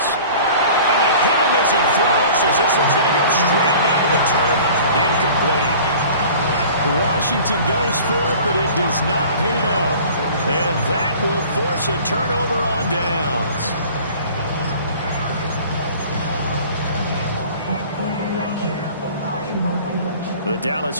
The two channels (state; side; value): inverted; both; correlation -0.45